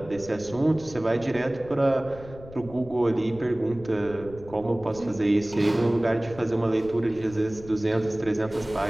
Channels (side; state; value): left; noise; rumble, 18 dB below the sound